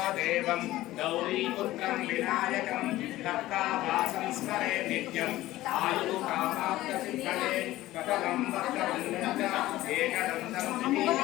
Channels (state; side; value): quieter; right; 16.2 dB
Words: దేవం గౌరీపుత్రం వినాయకం కర్తావాసం స్మరే నిత్యం ఆయు కామాప్త సిద్ధే కథం వక్రవందన ఏకదంతం